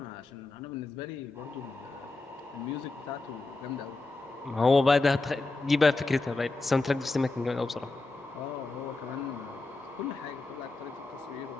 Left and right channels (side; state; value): right; quieter; 3.3 dB